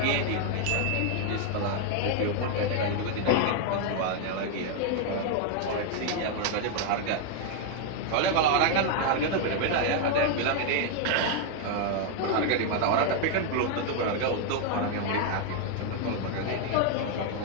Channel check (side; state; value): both; different; correlation 0.01